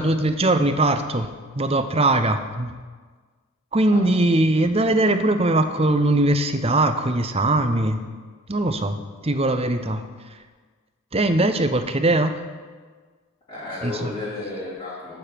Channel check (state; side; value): normal; both; correlation 0.51